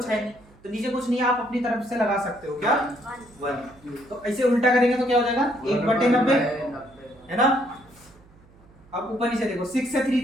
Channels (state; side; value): noise; right; hum, 27 dB below the sound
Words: है नहीं, तो नीचे कुछ नहीं, आप अपनी तरफ से लगा सकते हो क्या 1। तो ऐसे उल्टा करेंगे तो क्या हो जाएगा 1/90, है ना। अब ऊपर नीचे देखो, 6 से